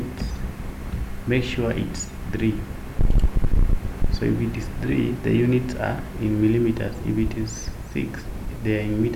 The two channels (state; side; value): identical; both; correlation 1.00